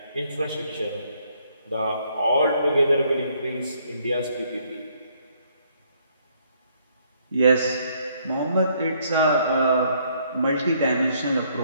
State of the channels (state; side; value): inverted; both; correlation -0.68